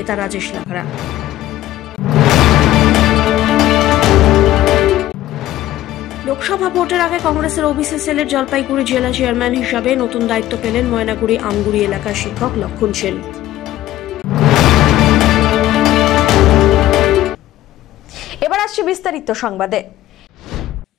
রাজেশ লাকড়া। লোকসভা ভোটের আগে কংগ্রেসের ওবিসি সেলের জলপাইগুড়ি জেলা চেয়ারম্যান হিসাবে নতুন দায়িত্ব পেলেন ময়নাগুড়ি আমগুড়ি এলাকার শিক্ষক লক্ষণ সেন। এবার আসছে বিস্তারিত সংবাদে।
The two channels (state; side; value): quieter; right; 14.5 dB